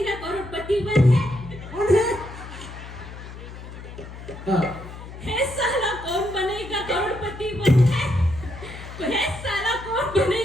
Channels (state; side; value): noise; left; hum, 13 dB below the sound